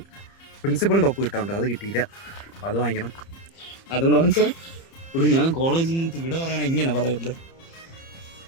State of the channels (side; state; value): right; late; 30 ms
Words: പ്രിൻസിപ്പളിന്റെ ഒപ്പ് കിട്ടാറുണ്ട്, അത് കിട്ടിയില്ല. അപ്പൊ അത് വാങ്ങിക്കണം. അതുകൊണ്ട് വാങ്ങിച്ചാൽ ഞാൻ കോളേജിൽ നിന്ന് ഇവിടെ പറയണ ഇങ്ങനെ പറയല്ലേ.